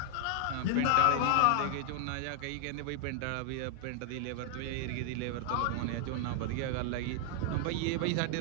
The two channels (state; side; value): different; both; correlation 0.00